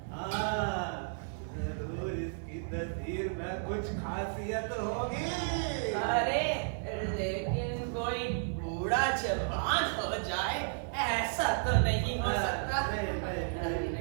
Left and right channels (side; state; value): left; silent; digital silence